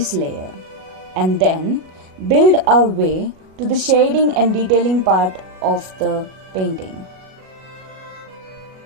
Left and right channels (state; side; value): late; left; 38 ms